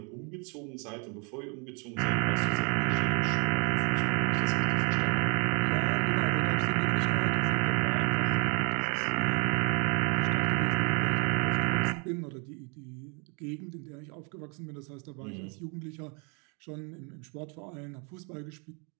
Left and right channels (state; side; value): quieter; left; 35.0 dB